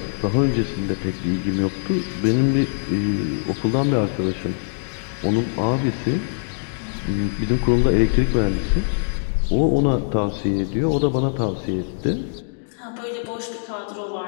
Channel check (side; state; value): right; silent; digital silence